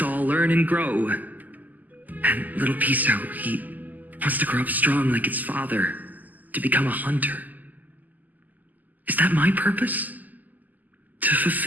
all learn and grow. And little Piso, he wants to grow up strong like his father, to become a hunter. Is that my purpose? To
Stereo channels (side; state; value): left; late; 0.082 ms